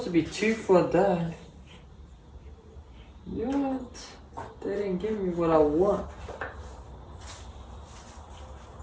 to be 2 for that. Yet they didn't give me what I want.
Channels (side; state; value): both; identical; correlation 1.00